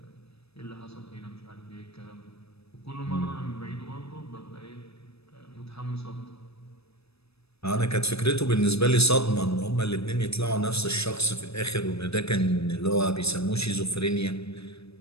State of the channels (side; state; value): right; late; 0.78 ms